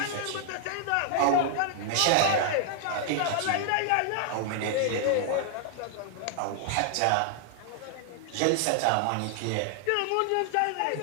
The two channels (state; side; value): different; both; correlation 0.00